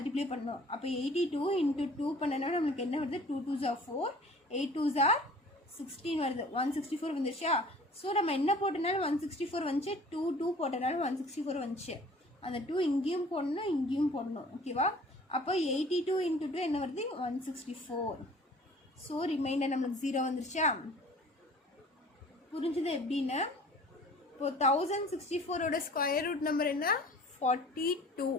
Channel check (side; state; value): both; normal; correlation 0.48